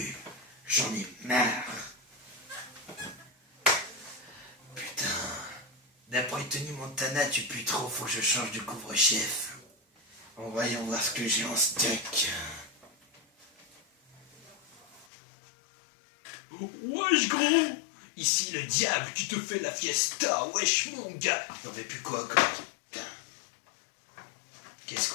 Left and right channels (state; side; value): drops out; right; at 15.1 s